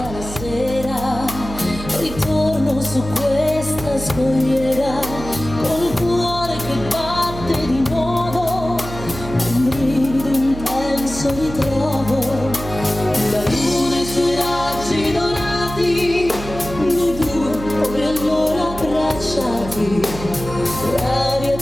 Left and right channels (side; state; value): right; noise; hum, 10 dB below the sound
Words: la sera, ritorno su questa scogliera col cuore che batte di nuovo, un brivido intenso ritrovo, la luna e i suoi raggi dorati, noi due come allora abbracciati, l'aria